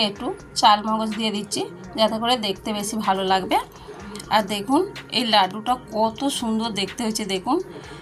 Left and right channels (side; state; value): both; identical; correlation 1.00